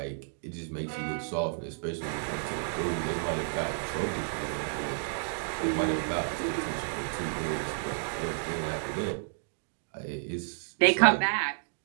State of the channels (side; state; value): left; silent; digital silence